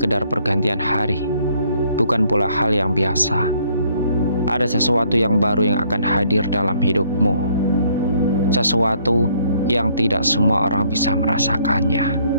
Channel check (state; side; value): inverted; both; correlation -0.65